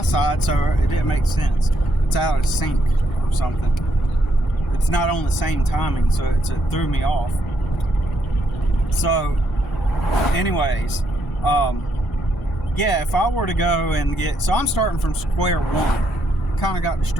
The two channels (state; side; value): normal; both; correlation 0.76